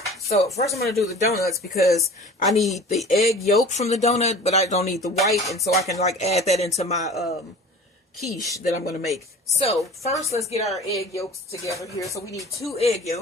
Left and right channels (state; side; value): normal; both; correlation 0.41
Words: So first I'm going to do the donuts because I need the egg yolk from the donut, but I don't need the white, and so I can like add that into my quiche that I'm going to make. So first let's get our egg yolks together here. So we need 2 egg